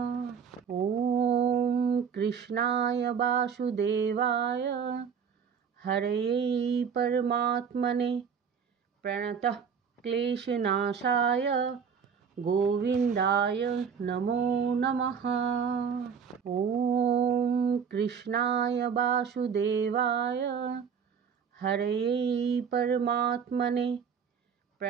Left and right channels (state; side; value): quieter; left; 6.8 dB